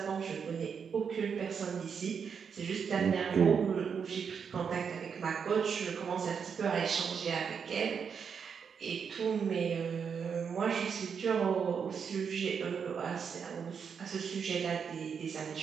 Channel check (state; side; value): quieter; left; 6.6 dB